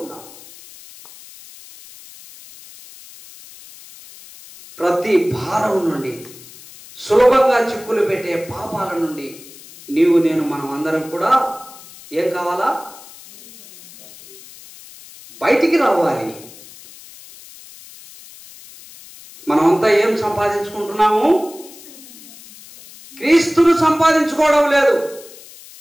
ఉన్నావు. ప్రతి భారం నుండి, సులభంగా చిక్కులు పెట్టే పాపాల నుండి మనం అందరం కూడా ఏం కావాలా? బయటికి రావాలి. మనమంతా ఏం సంపాదించుకుంటున్నాము? క్రీస్తును సంపాదించుకోవడం లేదు,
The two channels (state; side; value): noise; left; hiss, 20 dB below the sound